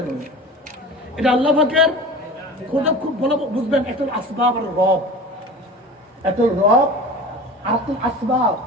এটা আল্লাহ পাকের খোদা, খুব ভালো বুঝবেন। একটা আসবাব আর রব, একটা রব আর একটা আসবাব।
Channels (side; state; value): both; normal; correlation 0.36